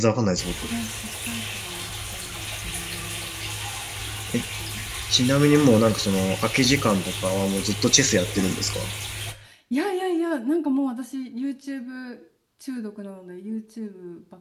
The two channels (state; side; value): identical; both; correlation 1.00